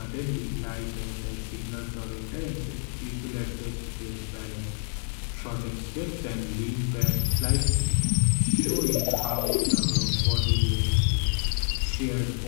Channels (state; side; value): silent; right; 60 dB below the other